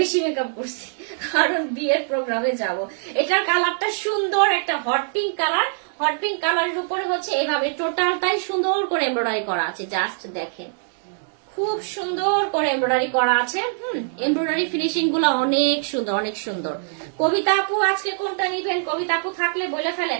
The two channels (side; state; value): left; silent; digital silence